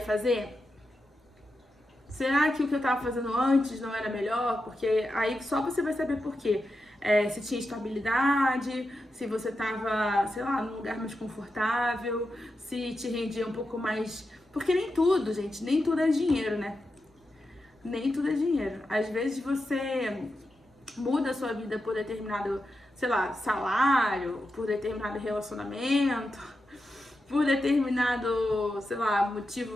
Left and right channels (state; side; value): normal; both; correlation 0.89